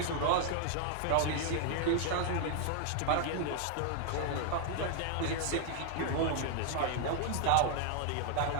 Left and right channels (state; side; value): different; both; correlation 0.00